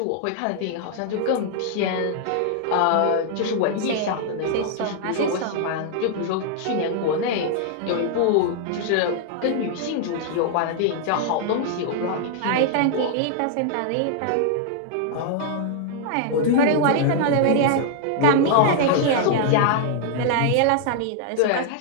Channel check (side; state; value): both; different; correlation -0.01